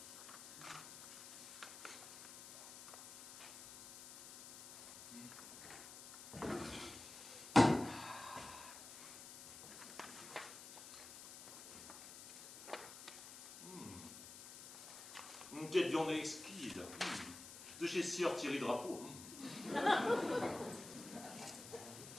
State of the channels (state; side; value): noise; left; hiss, 13 dB below the sound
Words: Quelle viande exquise. De chez Sieur Thierry Drapeau.